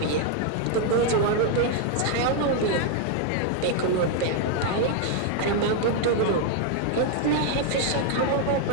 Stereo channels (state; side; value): different; both; correlation 0.00